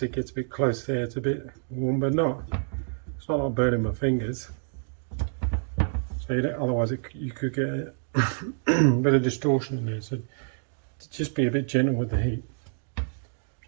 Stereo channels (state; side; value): silent; left; 60 dB below the other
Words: it gets a bit close there. It's a bit warm, but not. It's not like burning my fingers. So you don't, otherwise, you could get a bit of distortion in there. So just be a bit gentle with the heat. So